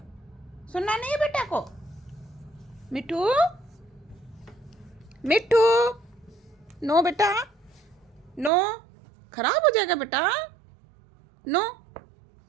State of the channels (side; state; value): left; drops out; at 8.5 s